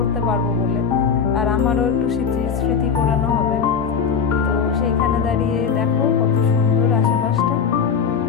পারবো বলে, আর আমারও একটু স্মৃতি করানো হবে। তো সেইখানে দাঁড়িয়ে দেখো কত সুন্দর আশেপাশটা,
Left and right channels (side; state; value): right; quieter; 6.5 dB